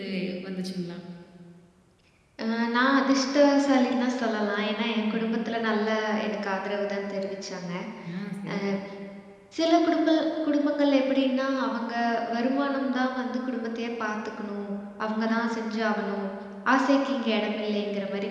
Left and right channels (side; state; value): both; identical; correlation 1.00